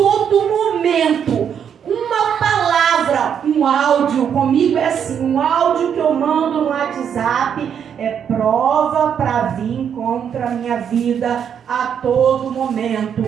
momento, uma palavra, um áudio, comigo é assim, um áudio que eu mando no WhatsApp é prova para vir contra a minha vida a todo momento.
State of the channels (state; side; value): quieter; left; 8.1 dB